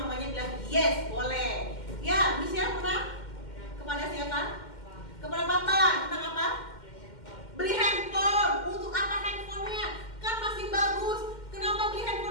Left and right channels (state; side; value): late; right; 2.1 ms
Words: bilang yes boleh. Ya, Michelle pernah kepada siapa? Kepada papa. Tentang apa? Beli handphone. Untuk apa handphonenya? Kan masih bagus. Kenapa beli